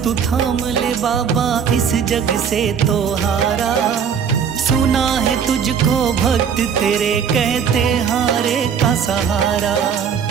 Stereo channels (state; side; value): quieter; left; 7.3 dB